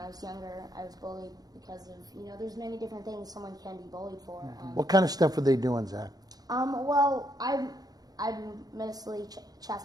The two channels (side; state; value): left; late; 0.19 ms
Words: was younger. I was bullied because of, there's many different things someone can be bullied for. What kind of stuff were they doing, Zach? Well, I'm mostly